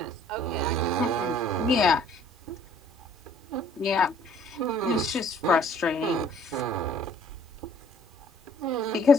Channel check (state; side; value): normal; both; correlation 0.58